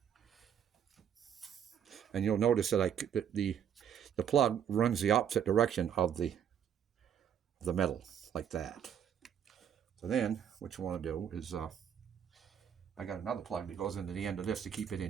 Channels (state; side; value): quieter; left; 8.8 dB